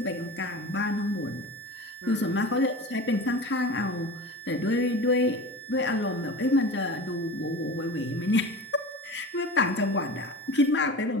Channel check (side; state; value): both; normal; correlation 0.33